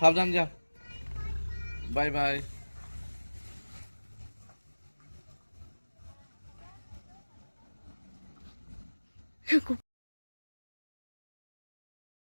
যা। Bye bye.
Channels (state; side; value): inverted; both; correlation -1.00